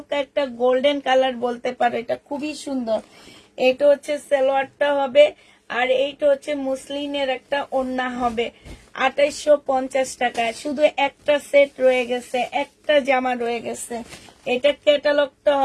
একটা গোল্ডেন কালার বলতে পারো, এটা খুবই সুন্দর। এটা হচ্ছে সালোয়ারটা হবে, আর এইটা হচ্ছে মুসলিনের একটা ওড়না হবে। 2850 টাকায় শুধু একটা সেট রয়ে গেছে, একটা জামা রয়ে গেছে। এটা ক্যাটালগটা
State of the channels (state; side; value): identical; both; correlation 1.00